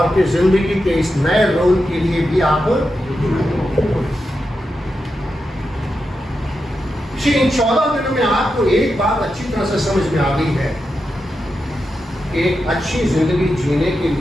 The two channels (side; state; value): both; normal; correlation 0.88